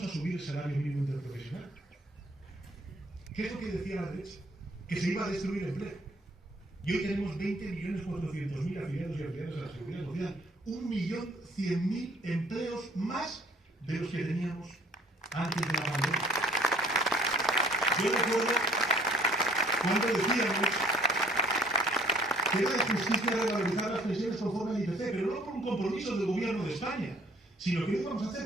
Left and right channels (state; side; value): normal; both; correlation 0.57